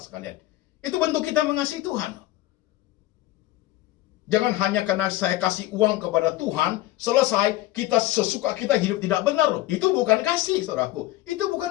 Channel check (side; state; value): right; quieter; 16.4 dB